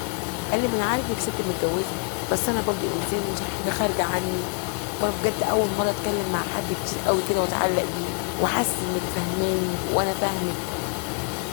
قال لي ما انا عارف انك ست متجوزه بس انا برضه انسان مش حاجه خارجه عني، وانا بجد اول مره اتكلم مع حد كتير قوي كده واتعلق بيه وحاسس انك فاهماني وانا فاهمك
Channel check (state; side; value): quieter; right; 37.9 dB